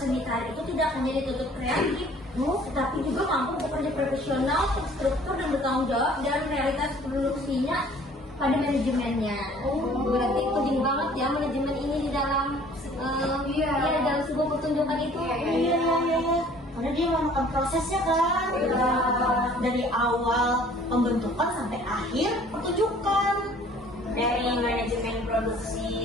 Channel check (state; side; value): normal; both; correlation 0.53